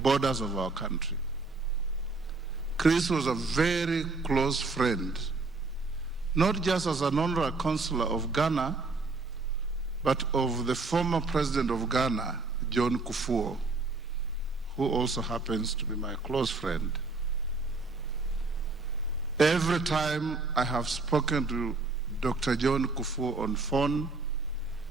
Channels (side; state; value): left; quieter; 3.8 dB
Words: of our country. Chris was a very close friend, not just as an honorary consular of Ghana, but of the former president of Ghana, John Kufuor, who also happens to be my close friend. Every time I have spoken to Dr. John Kufuor on phone,